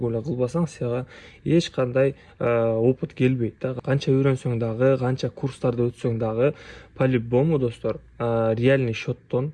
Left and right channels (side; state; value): both; identical; correlation 1.00